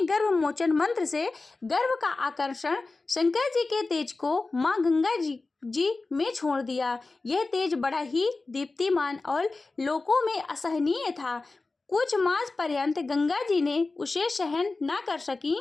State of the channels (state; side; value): quieter; right; 3.6 dB